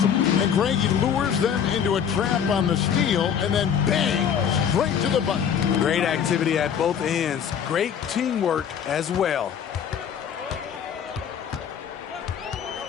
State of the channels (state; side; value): quieter; right; 8.1 dB